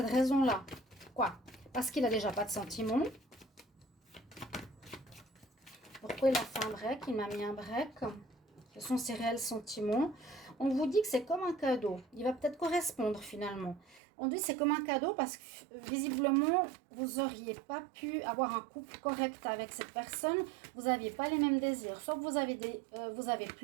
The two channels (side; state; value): left; drops out; at 14.0 s